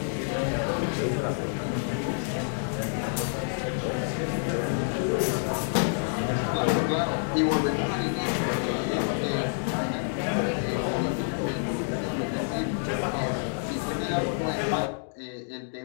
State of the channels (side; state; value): right; silent; digital silence